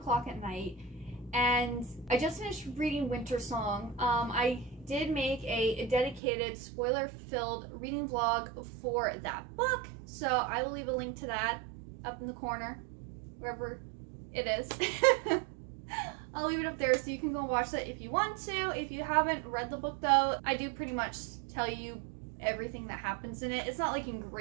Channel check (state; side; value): drops out; left; at 6.2 s